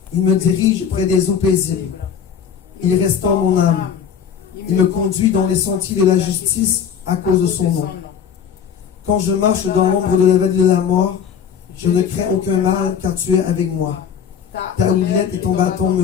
Il me dirige près des eaux paisibles. Il restaure mon âme. Il me conduit dans les sentiers de la justice à cause de son nom. Quand je marche dans l'ombre de la vallée de la mort, je ne crains aucun mal, car tu es avec moi. Ta houlette et ton bâton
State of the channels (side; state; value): right; quieter; 7.7 dB